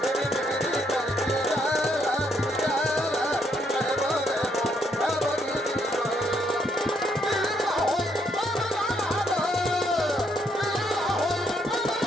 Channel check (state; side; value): normal; both; correlation 0.73